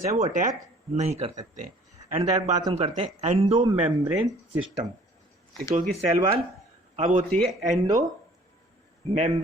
हैं वो अटैक नहीं कर सकते। एंड दैट बात हम करते हैं एंडो मेम्ब्रेन सिस्टम, क्योंकि सेल वॉल अब होती है एंडो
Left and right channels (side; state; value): both; normal; correlation 0.54